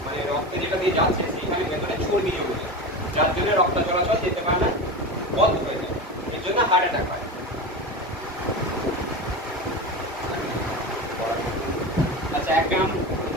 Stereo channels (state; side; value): normal; both; correlation 0.25